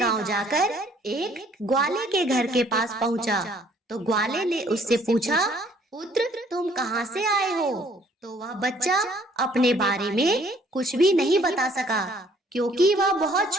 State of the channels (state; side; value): normal; both; correlation 0.61